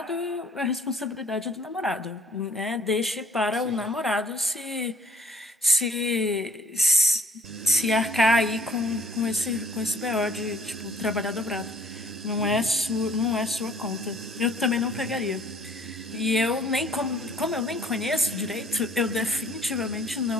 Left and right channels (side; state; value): both; normal; correlation 0.57